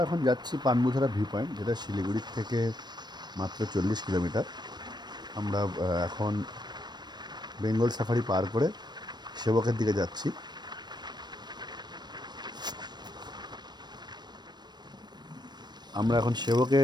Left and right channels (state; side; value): late; left; 0.21 ms